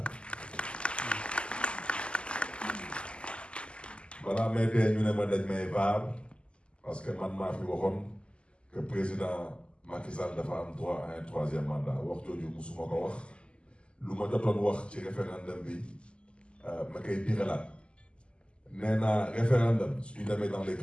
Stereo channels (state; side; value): late; right; 0.052 ms